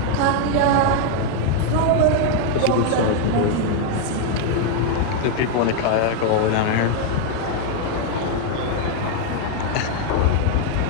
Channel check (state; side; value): different; both; correlation 0.00